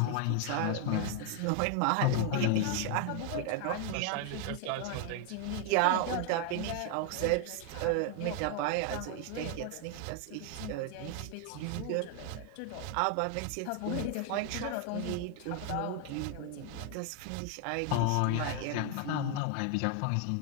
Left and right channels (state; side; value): different; both; correlation 0.00